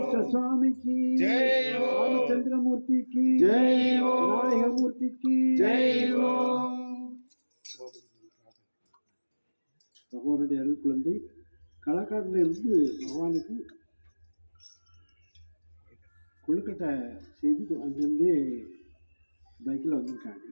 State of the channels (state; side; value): inverted; both; correlation -1.00